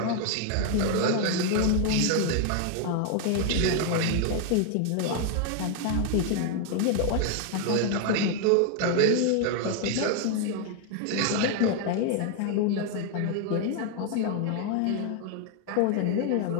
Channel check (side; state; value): both; different; correlation 0.01